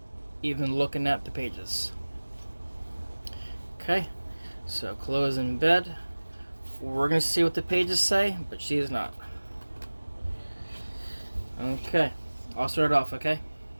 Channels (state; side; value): inverted; both; correlation -1.00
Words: even looking at the pages. Okay, so Chloe's in bed. We're going to see what the pages say, but she is not. Okay, I'll start it off, okay?